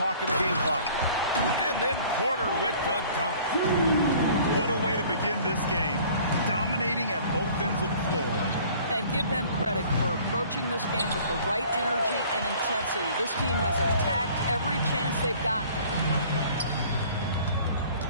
and the game clock. And then Porter with the dunk. What a way to begin this game. Dominating at both ends of the floor. And give them credit for approaching this game with the right energy and intensity. This team has attacked every chance they've gotten.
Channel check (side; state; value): both; inverted; correlation -0.51